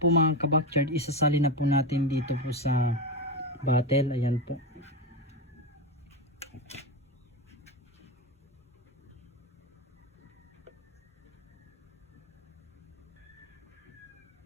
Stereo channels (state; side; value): normal; both; correlation 0.15